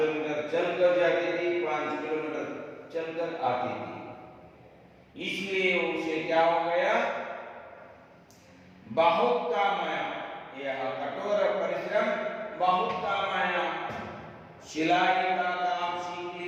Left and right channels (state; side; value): identical; both; correlation 1.00